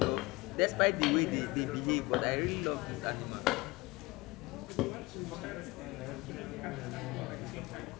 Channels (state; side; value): quieter; right; 22.4 dB